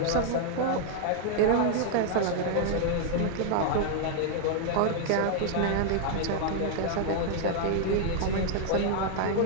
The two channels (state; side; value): different; both; correlation -0.01